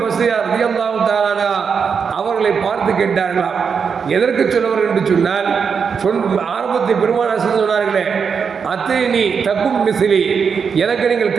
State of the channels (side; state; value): left; quieter; 6.2 dB